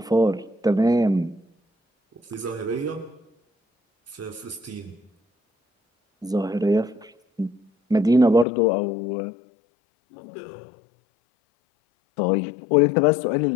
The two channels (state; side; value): drops out; right; at 8.5 s